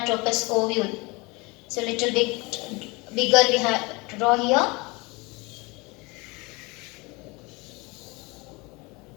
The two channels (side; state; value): right; quieter; 25.9 dB